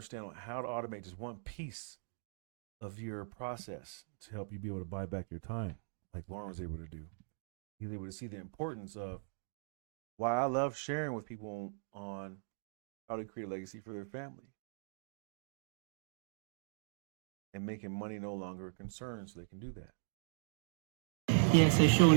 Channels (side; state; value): left; silent; digital silence